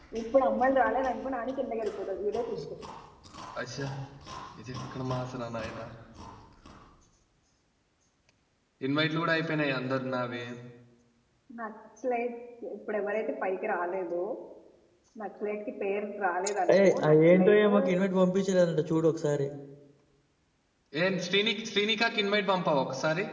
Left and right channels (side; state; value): both; identical; correlation 1.00